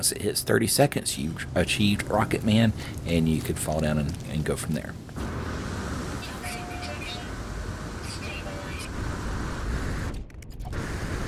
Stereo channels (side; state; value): both; identical; correlation 1.00